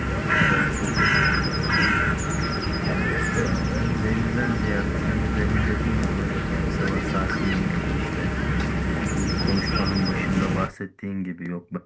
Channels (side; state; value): both; identical; correlation 1.00